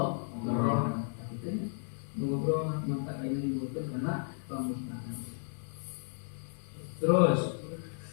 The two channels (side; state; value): right; silent; 55 dB below the other